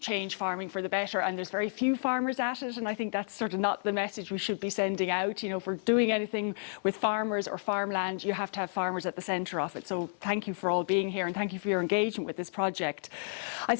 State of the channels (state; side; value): silent; right; 57 dB below the other